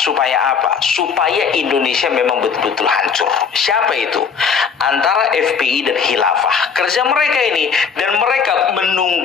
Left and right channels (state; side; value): quieter; right; 6.2 dB